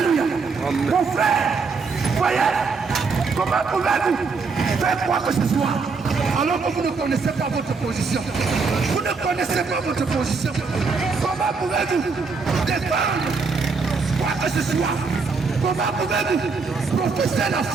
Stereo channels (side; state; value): left; quieter; 4.7 dB